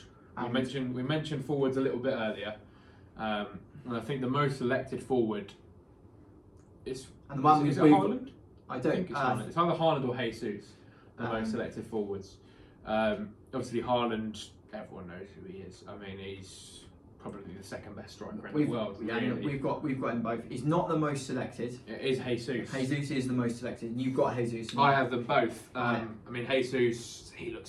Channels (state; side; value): identical; both; correlation 1.00